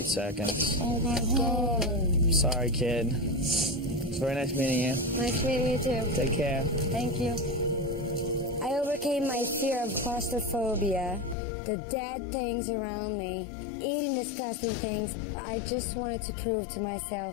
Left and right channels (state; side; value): drops out; right; at 11.4 s